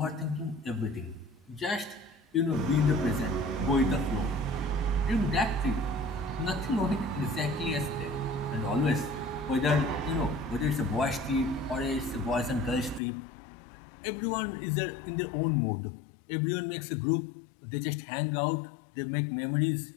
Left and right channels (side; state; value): right; drops out; at 13.0 s